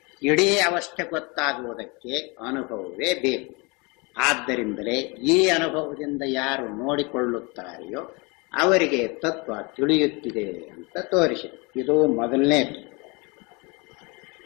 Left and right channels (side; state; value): right; quieter; 28.6 dB